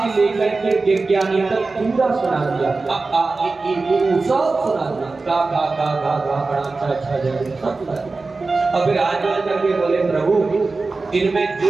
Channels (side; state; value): left; quieter; 3.8 dB